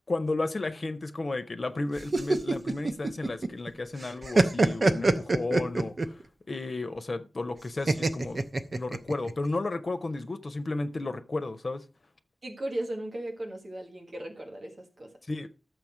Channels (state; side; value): normal; both; correlation 0.94